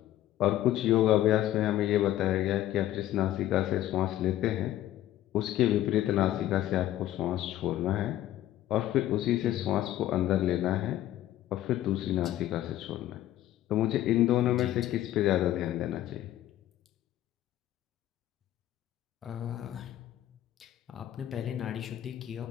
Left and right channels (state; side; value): quieter; right; 13.3 dB